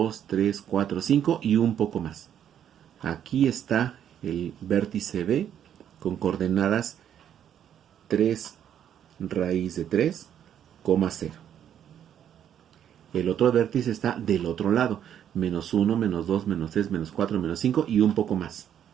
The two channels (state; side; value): quieter; left; 9.6 dB